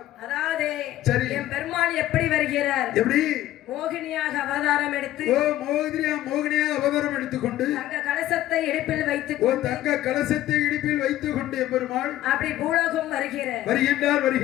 அதாவது சரி. என் பெருமாள் எப்படி வருகிறார்? எப்படி? மோகினியாக அவதாரம் எடுத்து ஓ, மோகினியா அவதாரம் எடுத்துக்கொண்டு தங்க கலசத்தை இடுப்பில் வைத்துக் ஓ, கொண்டு தங்க கலசத்தை இடுப்பில் வைத்துக் கொண்டு எம்பெருமாள் அப்படி பூலோகம் வருகிறார்.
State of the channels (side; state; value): right; quieter; 14.2 dB